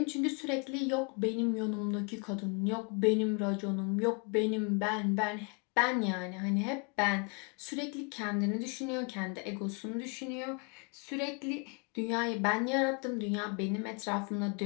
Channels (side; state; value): right; quieter; 34.7 dB